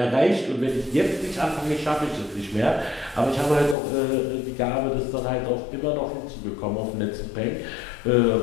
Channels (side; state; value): right; drops out; at 3.8 s